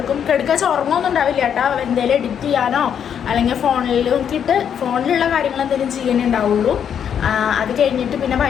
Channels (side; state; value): right; quieter; 8.4 dB